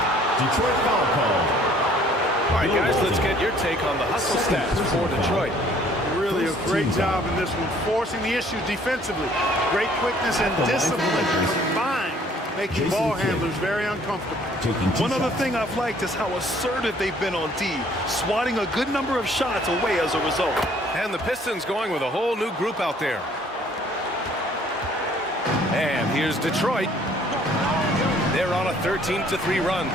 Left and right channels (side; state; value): both; normal; correlation 0.59